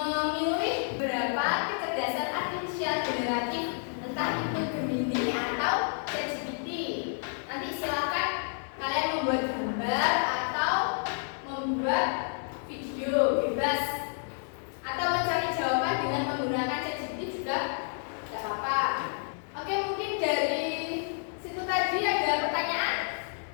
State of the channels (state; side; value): silent; right; 58 dB below the other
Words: berapa kecerdasan artifisial generatif, entah itu Gemini atau ChatGPT. Nanti silahkan kalian membuat gambar atau membuat video bebas, atau mencari jawaban dengan menggunakan ChatGPT juga tidak apa-apa. Oke, mungkin dari situ tadi ada pertanyaan